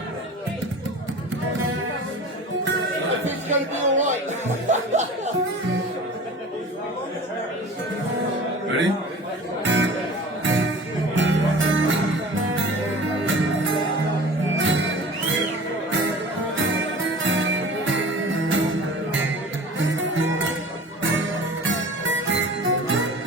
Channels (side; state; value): both; normal; correlation 0.40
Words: It's gonna be alright. Ready?